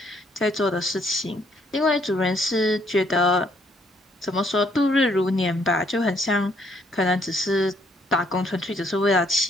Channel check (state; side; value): normal; both; correlation 0.67